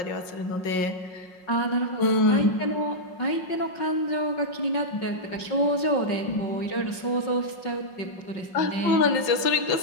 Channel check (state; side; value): late; right; 5.5 ms